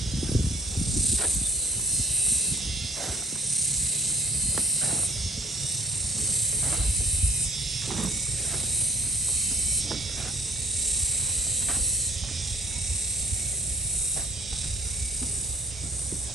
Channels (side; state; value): both; normal; correlation 0.55